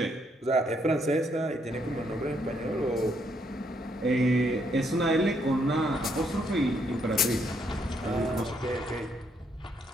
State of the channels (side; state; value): both; normal; correlation 0.73